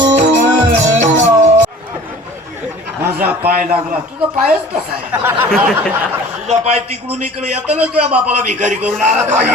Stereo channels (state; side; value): normal; both; correlation 0.45